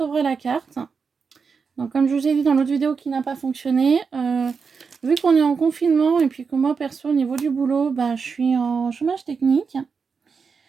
la carte. Donc comme je vous ai dit dans l'autre vidéo qui n'a pas fonctionné, vu qu'on est en confinement et puis que moi perso au niveau du boulot, bah, je suis en chômage technique,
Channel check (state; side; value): quieter; left; 5.4 dB